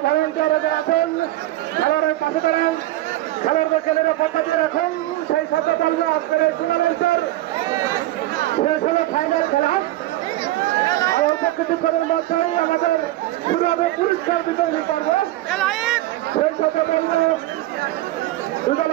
ভলেন্টিয়াররা আছেন খেলোয়াড়ের পাশে দাঁড়ান, খেলোয়াড়দেরকে নিরাপত্তা দিয়ে রাখুন। সেই সাথে বলবো আজকের এই টুর্নামেন্টের শেষ হলো ফাইনাল খেলা। কিছুক্ষণের মধ্যেই আমাদের শুরু হবে পুরস্কার বিতরণী পর্ব। সেই সাথে বলবো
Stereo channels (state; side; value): quieter; left; 16.3 dB